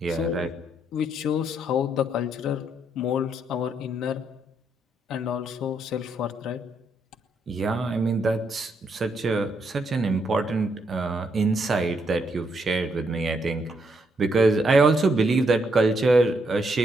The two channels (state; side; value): normal; both; correlation 0.76